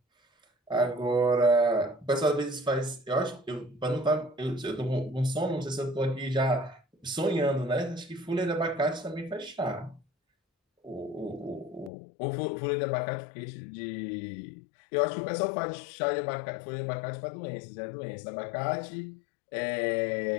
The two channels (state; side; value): drops out; right; at 11.9 s